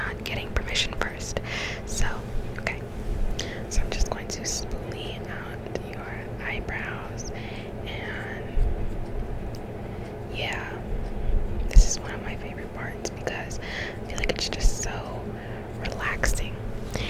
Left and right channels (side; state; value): both; identical; correlation 1.00